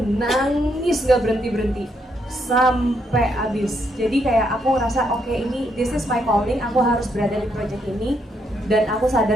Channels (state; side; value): normal; both; correlation 0.76